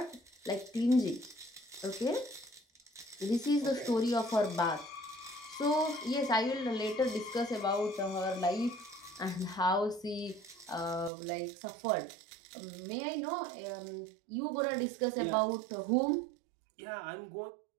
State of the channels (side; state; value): left; drops out; at 11.1 s